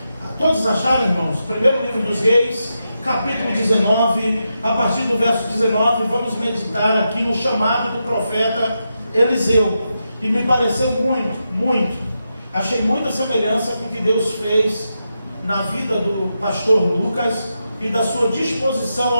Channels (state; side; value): inverted; both; correlation -0.87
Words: Todos acharam, irmãos? Primeiro livro dos Reis, capítulo 19, a partir do verso 19, vamos meditar aqui no chamado do profeta Eliseu. E me pareceu muito. Achei muita semelhança com o que Deus fez na vida do pastor Lucas e da sua disposição